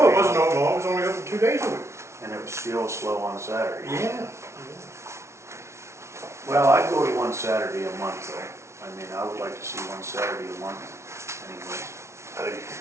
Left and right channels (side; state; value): left; late; 0.13 ms